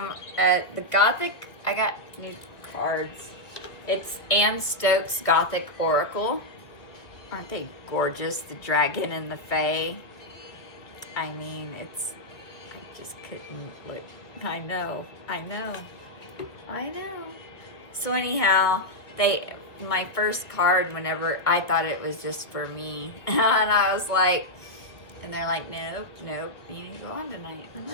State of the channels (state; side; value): late; right; 1.9 ms